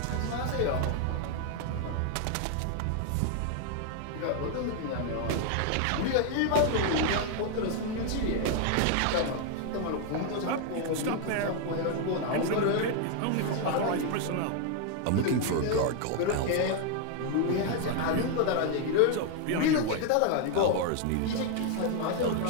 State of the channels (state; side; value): different; both; correlation 0.00